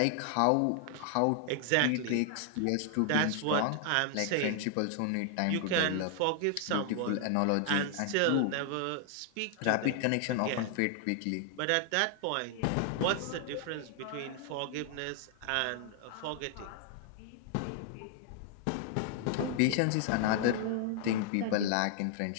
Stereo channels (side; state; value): both; different; correlation 0.00